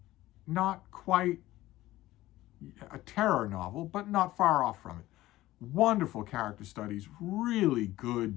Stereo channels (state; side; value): quieter; right; 16.3 dB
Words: Not quite a terror novel, but not far off from it. Wonderful character studies, really